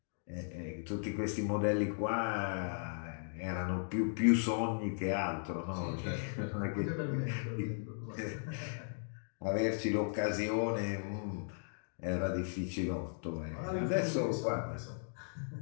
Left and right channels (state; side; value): silent; right; digital silence